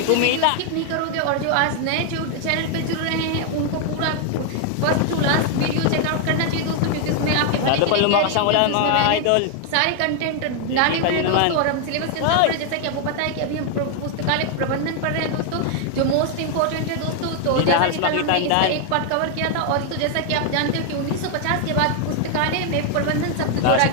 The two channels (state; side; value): different; both; correlation 0.00